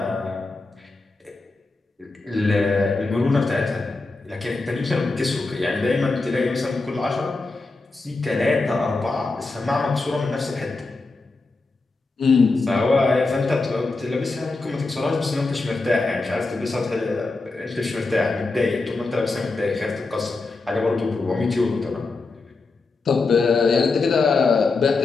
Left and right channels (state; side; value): quieter; right; 3.6 dB